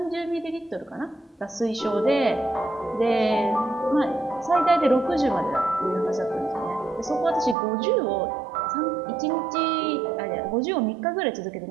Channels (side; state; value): left; drops out; at 7.6 s